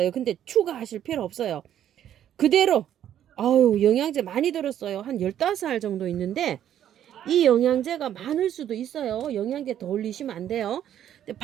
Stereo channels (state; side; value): quieter; left; 10.6 dB